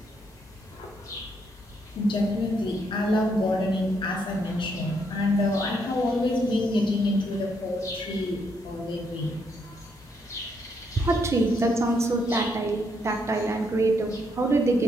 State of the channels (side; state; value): both; normal; correlation 0.75